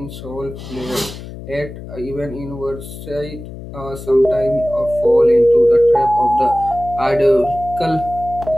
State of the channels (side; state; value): left; noise; hum, 13 dB below the sound